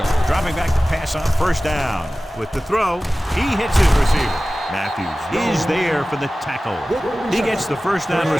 Dropping back to pass on first down. With the throw, he hits his receiver. Matthews is there for the tackle. He gets the first down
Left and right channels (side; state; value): both; normal; correlation 0.96